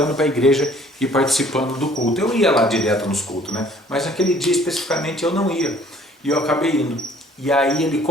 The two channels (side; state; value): both; normal; correlation 0.57